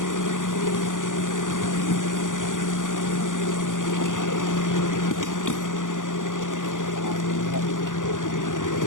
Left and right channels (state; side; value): late; right; 0.88 ms